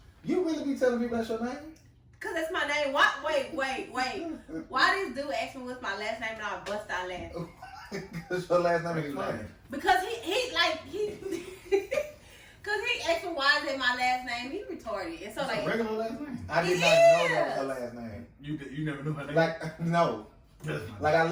You really be telling people that's your name? Cause that's my name. What? Wait. Why this dude asked me what's my last name and I bust out laughing? Cause your last name is funny. Because he cause he asked me why is it my last name? He retarded. And so it's like a regular last name. I did not know that was her last name. You never knew her name. Like no. Like I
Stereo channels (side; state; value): both; identical; correlation 1.00